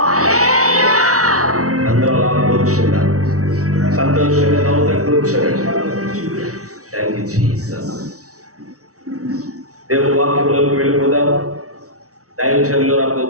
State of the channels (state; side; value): late; left; 0.65 ms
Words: అందరూ అలా కూర్చున్నారు. సంతోషంగా నవ్వుతూ కూర్చోండి. Thank you Jesus. దేవుని వాక్యంలోకి వెళ్ళిపోదాం. దైవజనులు నాకు